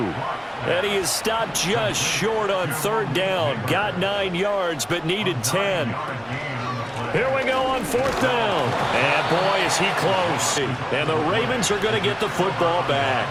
And he is stopped just short on 3rd down. Got 9 yards, but needed 10. Here we go on 4th down. And boy, is he close. And the Ravens are going to get the football back.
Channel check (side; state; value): both; identical; correlation 1.00